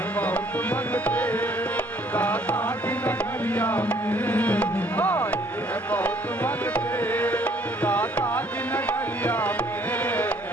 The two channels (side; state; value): both; normal; correlation 0.62